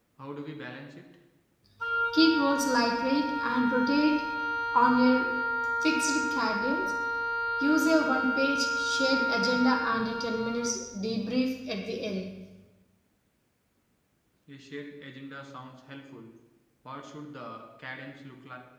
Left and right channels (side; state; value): both; identical; correlation 1.00